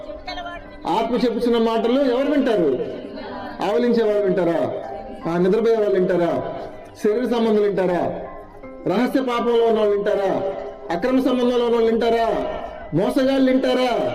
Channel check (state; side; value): identical; both; correlation 1.00